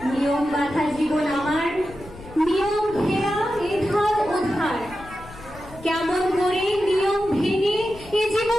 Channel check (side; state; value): left; noise; rumble, 18 dB below the sound